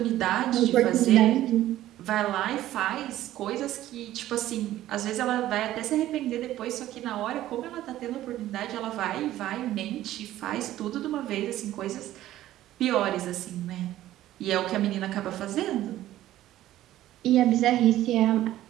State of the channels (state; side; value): quieter; left; 14.0 dB